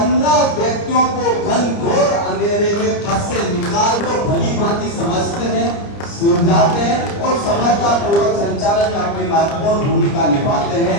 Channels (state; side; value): late; right; 30 ms